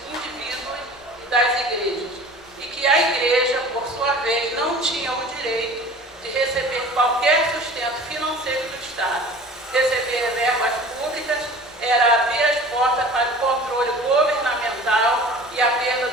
indivíduos e das igrejas, e que a igreja, por sua vez, não tinha o direito de receber qualquer sustento financeiro do Estado. Receber verbas públicas era abrir as portas para o controle governamental e a perda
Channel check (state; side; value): normal; both; correlation 0.42